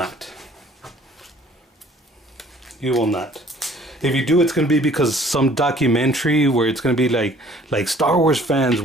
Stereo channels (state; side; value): normal; both; correlation 0.55